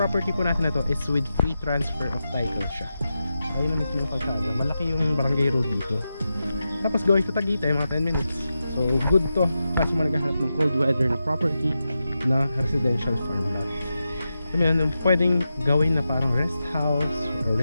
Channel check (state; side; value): inverted; both; correlation -0.90